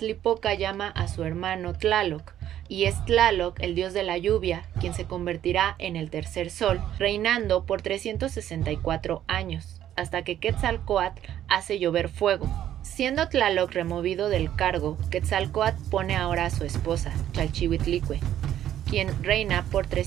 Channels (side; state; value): left; quieter; 11.4 dB